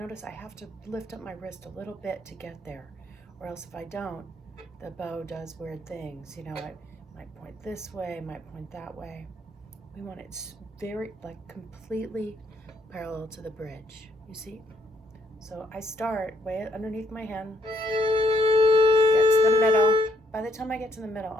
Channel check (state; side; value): normal; both; correlation 0.71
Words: I have to lift up my wrist a little bit to get there, or else if I don't, the bow does weird things. You know, it might point this way, might point that way. We want it very, like, completely parallel to the bridge, you see? So I start way underneath my hand, get to the middle. By the time I get to the middle,